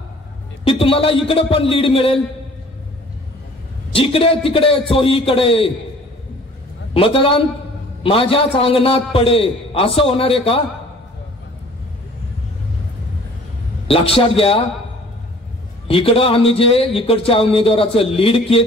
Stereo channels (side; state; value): both; normal; correlation 0.51